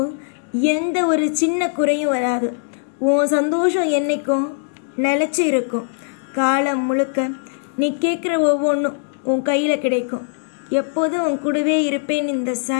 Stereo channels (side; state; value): right; silent; digital silence